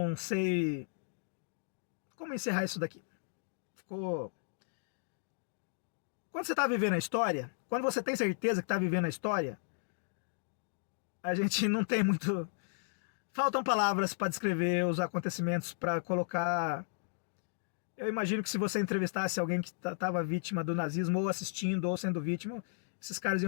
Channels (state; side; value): silent; right; digital silence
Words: sei como encerrar isso daqui. Ficou... Quando você está vivendo a história, quando você tem certeza que está vivendo a história, a gente não tem muito... Faltam palavras para descrever os acontecimentos, para colocar... Eu imagino que se você entrevistasse alguém que estava vítima do nazismo, ou assistindo, ou sendo vítima, esses caras